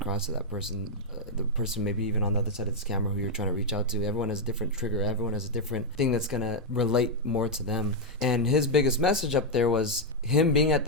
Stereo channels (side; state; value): both; normal; correlation -0.01